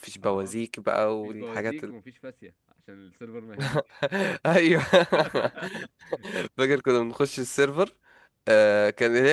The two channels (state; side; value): identical; both; correlation 1.00